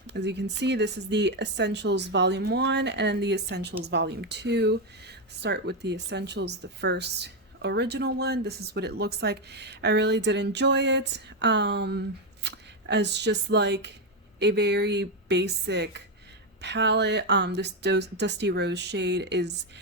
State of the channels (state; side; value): normal; both; correlation 0.06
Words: As you can see, this is the Essentials Volume 1 and the Essentials Volume 2. Start with the Essentials, the first original one. This is what it looks like. I really did enjoy it as just like a very basic palette. This Dusty Rose shade is